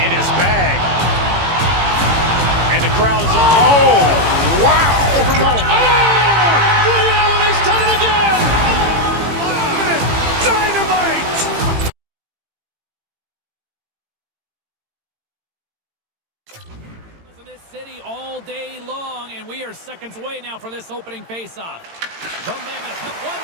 in his bag. And the crowd is, oh, wow. Liddell, he's done it again. Dynamite. In this city all day long, and we are seconds away now from this opening faceoff. The Mammoth have won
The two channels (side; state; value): left; late; 18 ms